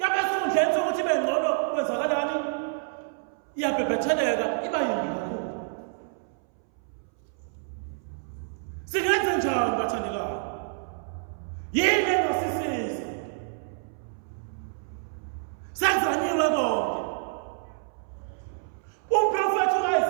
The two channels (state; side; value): silent; left; 59 dB below the other